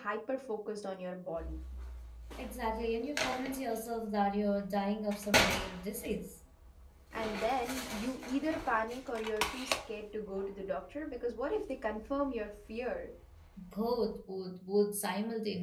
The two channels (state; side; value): identical; both; correlation 1.00